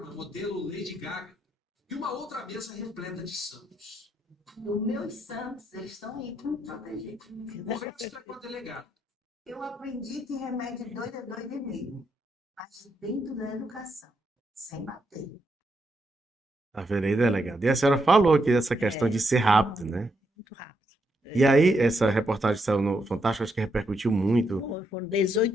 modelo Lady Gaga e uma outra mesa repleta de santos. Os meus santos, eles estão aí para me proteger. O resto é com a delegada. Eu aprendi que remédio doido é doido mesmo, mas dentro da educação, sem bater. Tá vendo aí, delegado? E a senhora falou aqui dessa questão de ser rápido, né? Muito rápido. E aí, essa reportagem que saiu no Fantástico, acho que repercutiu muito. Foram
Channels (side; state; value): both; normal; correlation 0.80